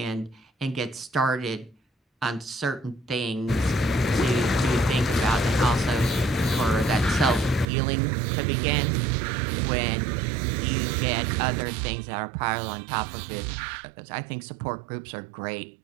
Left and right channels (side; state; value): left; drops out; at 7.7 s